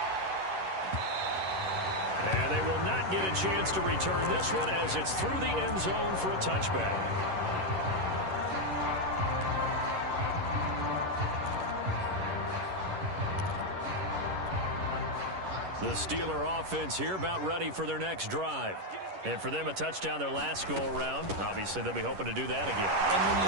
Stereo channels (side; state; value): left; late; 11 ms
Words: And they will not get a chance to return this one as it's through the end zone for a touchback. The Steeler offense here about ready for their next drive. And for them, a touchdown their last go-around. Obviously, they'll be hoping to do that again. And when you